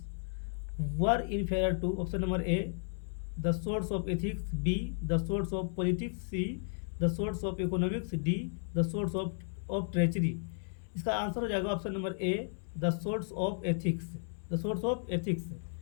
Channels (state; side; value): silent; right; 55 dB below the other